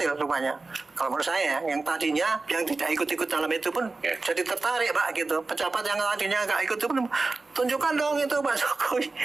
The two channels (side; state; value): left; quieter; 3.6 dB